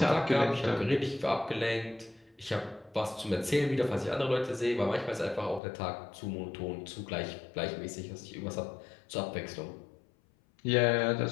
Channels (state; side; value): drops out; right; at 5.6 s